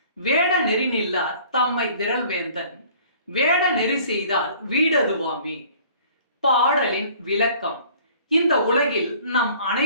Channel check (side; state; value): both; inverted; correlation -0.52